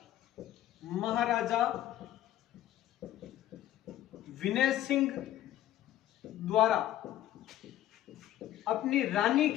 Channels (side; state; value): right; quieter; 13.0 dB